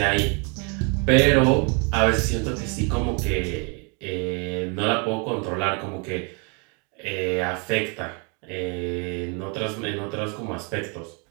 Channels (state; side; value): quieter; left; 35.0 dB